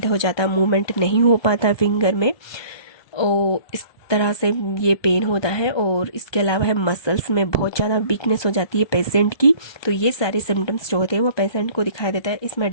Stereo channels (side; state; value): right; late; 1.2 ms